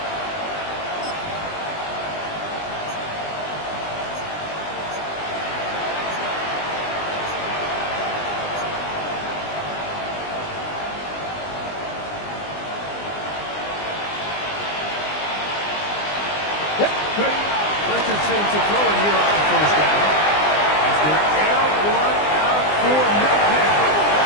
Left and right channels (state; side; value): late; right; 20 ms